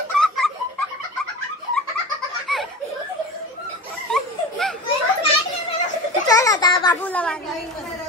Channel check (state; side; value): normal; both; correlation 0.31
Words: चल आता बाबूला